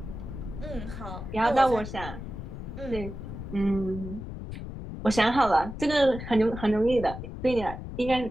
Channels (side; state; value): left; noise; rumble, 9 dB below the sound